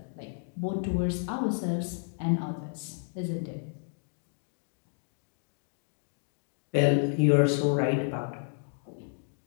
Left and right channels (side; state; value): right; silent; digital silence